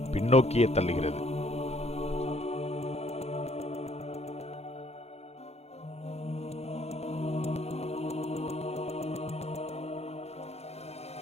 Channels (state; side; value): late; right; 0.31 ms